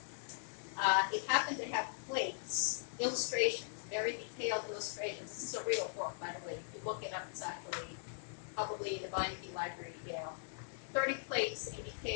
It happened to have plates, illustrations, very detailed illustrations. This is a real book, by the way. If you look it up, it's actually probably in the Beinecke Library, Yale. 30 plates in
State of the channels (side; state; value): right; silent; digital silence